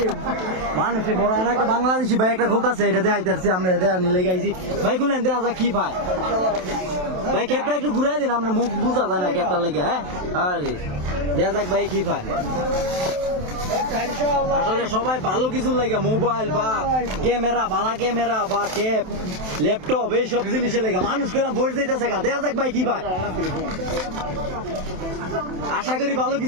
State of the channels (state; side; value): late; left; 27 ms